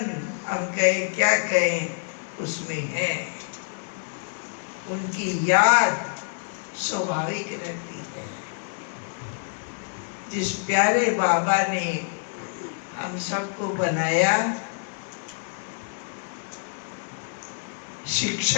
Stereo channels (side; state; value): right; silent; digital silence